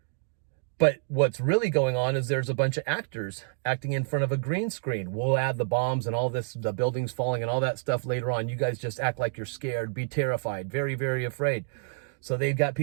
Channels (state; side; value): silent; left; digital silence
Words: But what's really going on is there's a bunch of actors acting in front of a green screen. We'll add the bombs and all this, the buildings falling and all that stuff later on. You guys just act like you're scared, be terrified, very, very afraid. So they've got